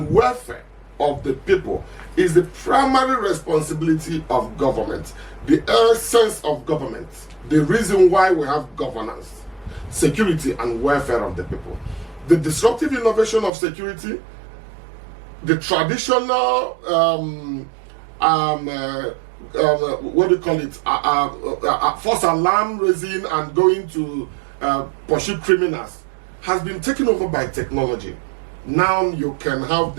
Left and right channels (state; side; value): drops out; left; at 13.5 s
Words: welfare of the people is the primary responsibility of government, the essence of government, the reason why we have governance, security and welfare of the people. The disruptive innovation of security, the traditional what do you call it? False alarm raising and going to pursue criminals has been taken over by technology. Now you can have